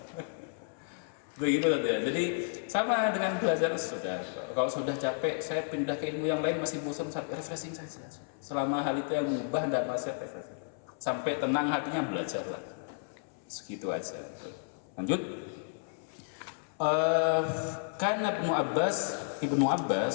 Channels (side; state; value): right; silent; 56 dB below the other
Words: begitu saja. Jadi sama dengan belajar sudah. Kalau sudah capek, saya pindah ke ilmu yang lain, masih bosan, refreshing saja. Selama hal itu yang mengubah tidak masih refreshing. Sampai tenang hatinya, belajarlah. Segitu aja. Lanjut. Karena Ibnu